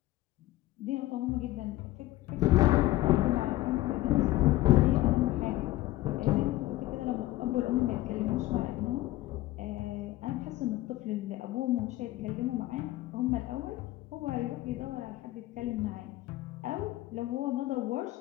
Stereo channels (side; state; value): right; quieter; 16.8 dB